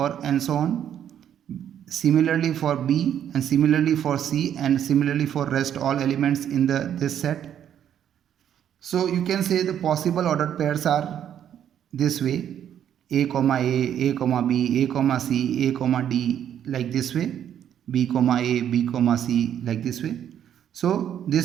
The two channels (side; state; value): left; quieter; 9.8 dB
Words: and so on. Similarly for B and similarly for C and similarly for rest all elements in this set. So you can say the possible ordered pairs are this way: A comma A comma B, A comma C, A comma D, like this way, B comma A, B comma C, like this way. So